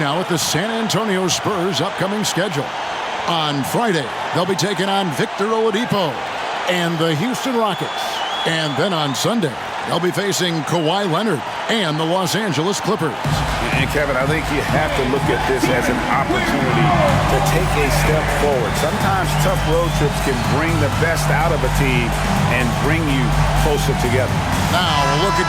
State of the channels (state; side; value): identical; both; correlation 1.00